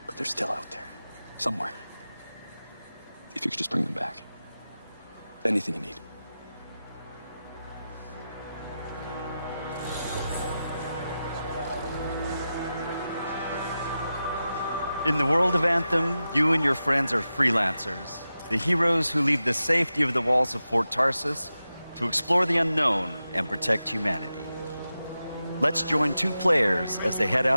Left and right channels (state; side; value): inverted; both; correlation -0.92